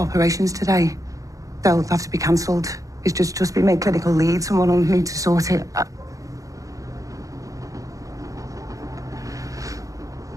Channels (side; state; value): left; late; 0.16 ms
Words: today. They'll have to be cancelled. He's just been made clinical lead. Someone will need to sort it.